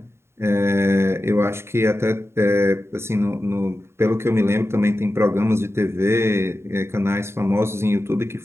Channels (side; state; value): left; late; 0.12 ms